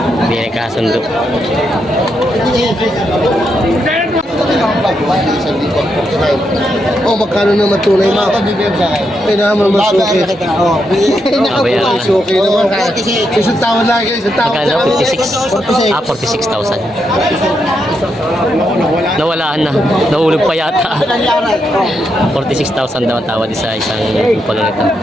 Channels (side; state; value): both; normal; correlation 0.81